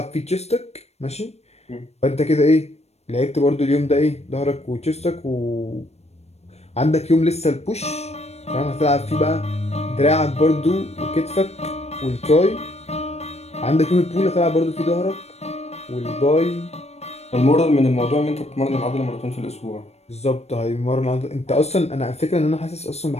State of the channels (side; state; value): right; late; 0.31 ms